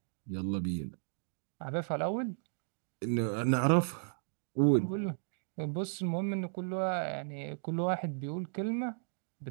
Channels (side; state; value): left; silent; digital silence